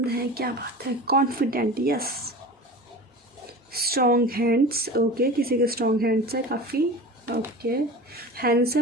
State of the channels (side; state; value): both; normal; correlation 0.34